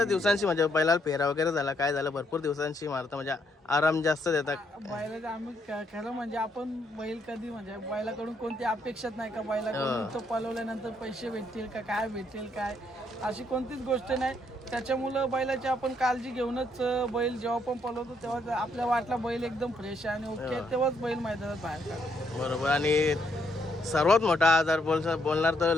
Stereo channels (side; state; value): both; normal; correlation 0.74